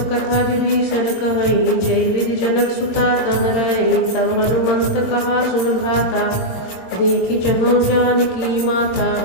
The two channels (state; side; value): late; right; 22 ms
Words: कथा विभीषण कहई जय विधि जनक सुता तह रही। तब हनुमंत कहा सुन भ्राता देखी चहु जानकी माता।